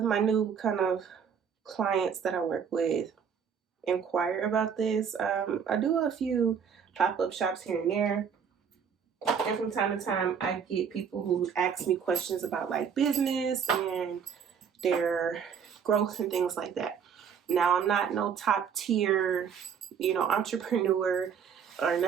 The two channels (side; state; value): left; quieter; 7.1 dB